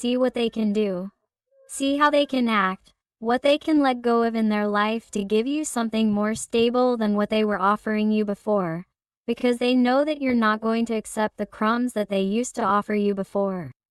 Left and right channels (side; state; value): both; identical; correlation 1.00